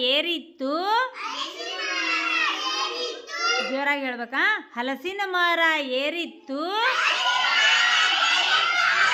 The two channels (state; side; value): identical; both; correlation 1.00